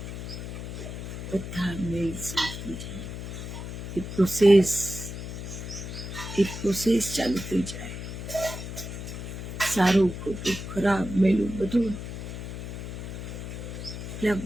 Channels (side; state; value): left; noise; hum, 7 dB below the sound